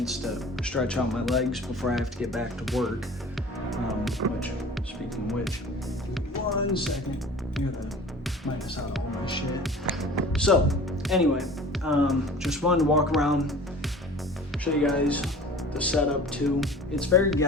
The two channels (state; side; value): normal; both; correlation 0.43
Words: to stretch out my legs before I have to get back to work, which, speaking of which, 1 second, I gotta minus out all my shit. So anyway, just wanted to walk around, show you guys the setup too. It's very